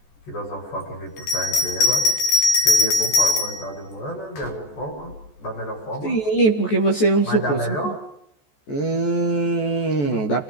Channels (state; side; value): late; right; 14 ms